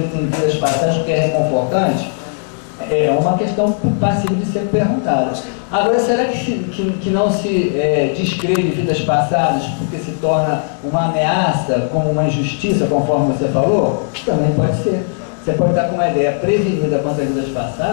em vidas passadas porque é reconfortante? É uma questão passível de ser perguntada. Agora, será que não se descreve vidas passadas porque se torna uma ameaça, como uma injustiça, conforme você falou? Também pode ser. Você pode estar com uma ideia prevenida contra vidas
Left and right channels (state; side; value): silent; right; digital silence